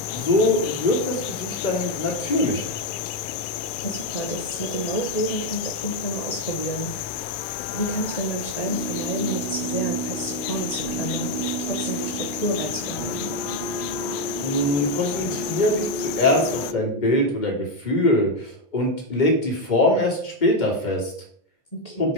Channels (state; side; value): late; right; 2.4 ms